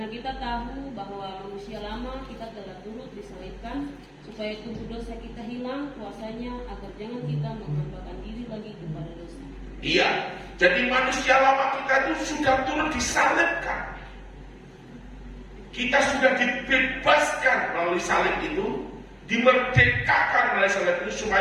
kita tahu bahwa manusia lama kita telah turut disalibkan supaya tubuh dosa kita hilang kuasanya, agar jangan kita menghambakan diri lagi kepada dosa. Iya, jadi manusia lama kita itu sudah turut disalibkan. Kita sudah dibebaskan melalui salib itu, dimerdekakan melalui salib itu,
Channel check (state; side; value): identical; both; correlation 1.00